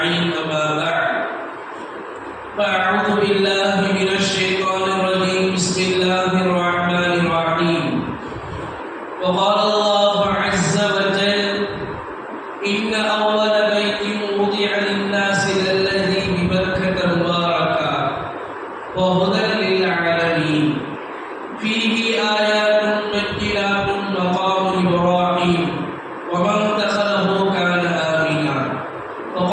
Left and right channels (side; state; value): both; identical; correlation 1.00